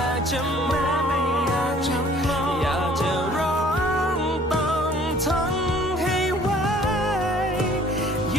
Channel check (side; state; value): both; normal; correlation 0.54